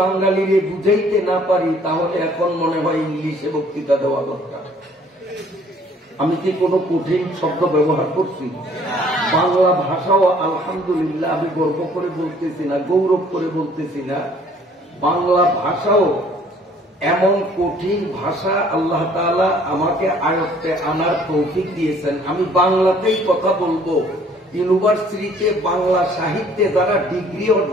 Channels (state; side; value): normal; both; correlation 0.58